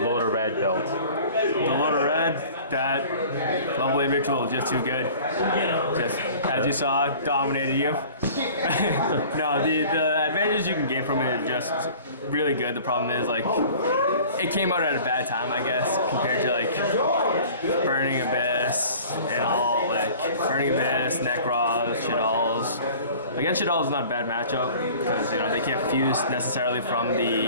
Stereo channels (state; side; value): inverted; both; correlation -0.46